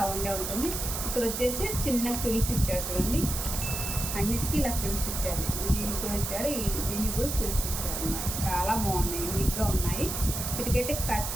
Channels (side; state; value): right; noise; hiss, 4 dB below the sound